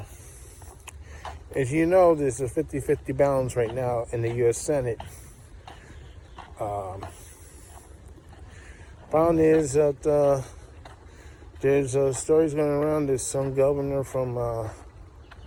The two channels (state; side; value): identical; both; correlation 1.00